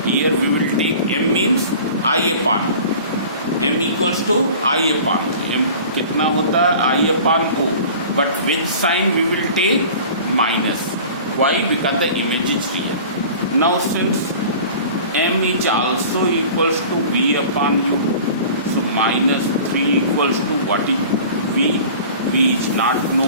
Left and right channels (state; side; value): inverted; both; correlation -0.42